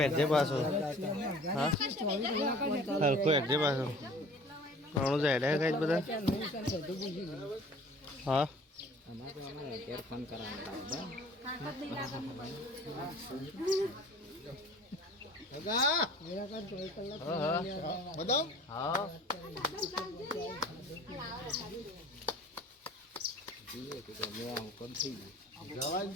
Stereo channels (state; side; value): normal; both; correlation 0.47